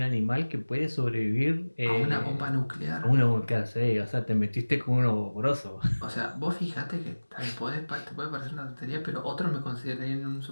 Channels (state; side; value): inverted; both; correlation -1.00